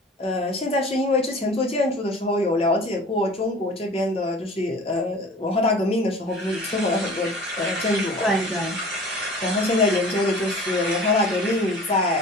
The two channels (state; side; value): normal; both; correlation 0.43